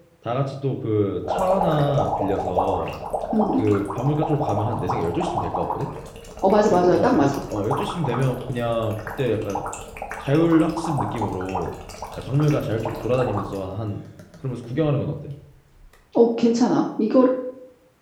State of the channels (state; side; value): identical; both; correlation 1.00